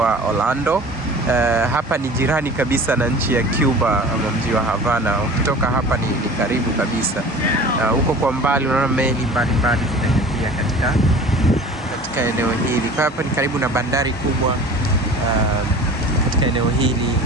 Orlando. Hapa ni jirani kabisa na nchi ya Cuba ama mji wa Havana. Ukitoka hapa ni karibu kabisa. Huko kwa mbali unaona meli mbalimbali zinaelekea katika eneo hili. Kwa hapa ni karibu na bandari kubwa katika eneo hili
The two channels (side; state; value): both; normal; correlation 0.41